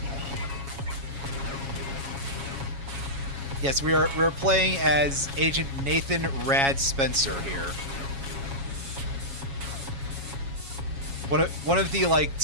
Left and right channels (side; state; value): left; late; 7.2 ms